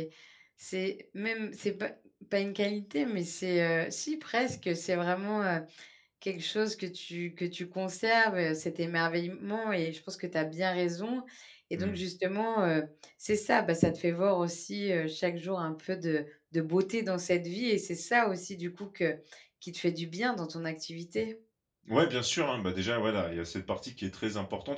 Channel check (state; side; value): identical; both; correlation 1.00